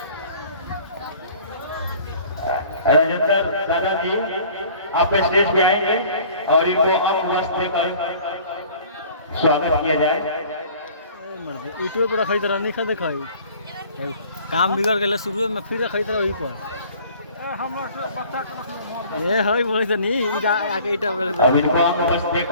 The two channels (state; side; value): inverted; both; correlation -0.50